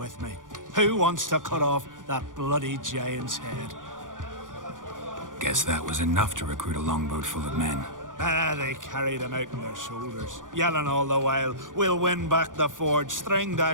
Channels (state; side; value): late; left; 0.88 ms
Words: me? Who wants to cut off that bloody giant's head?" Guess that was enough to recruit a longboat full of men. They carried him out on their shoulders, yelling all the while, "We'll win back the forge, string